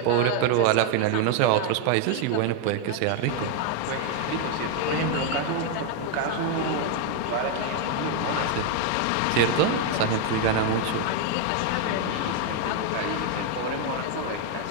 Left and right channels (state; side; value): different; both; correlation 0.01